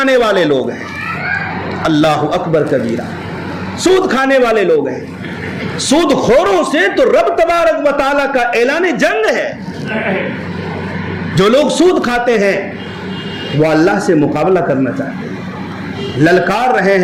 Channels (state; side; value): identical; both; correlation 1.00